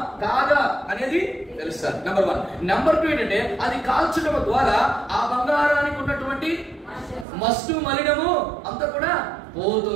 కాదా అనేది తెలుస్తారు. నెంబర్ 1. నెంబర్ 2 ఏంటంటే అది కాల్చడం ద్వారా ఆ బంగారానికి ఉన్నటువంటి మస్టు మలినము అంతా కూడా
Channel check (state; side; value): drops out; left; at 7.2 s